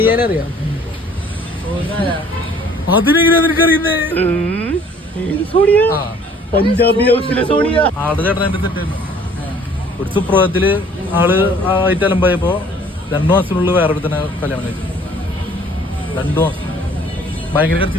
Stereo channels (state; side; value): normal; both; correlation 0.55